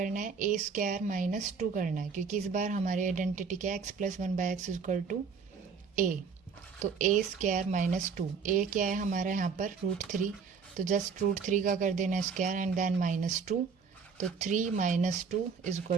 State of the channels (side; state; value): left; quieter; 5.7 dB